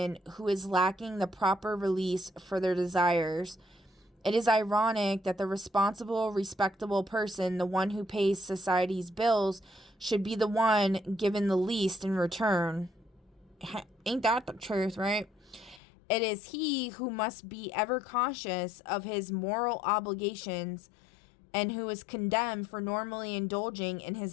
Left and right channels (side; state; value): right; drops out; at 15.8 s